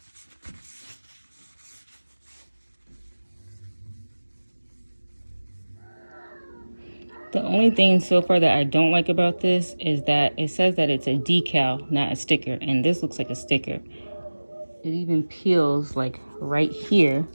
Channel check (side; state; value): both; inverted; correlation -1.00